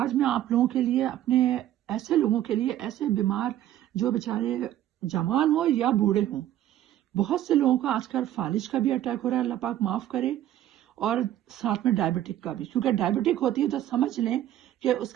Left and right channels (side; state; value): left; quieter; 12.6 dB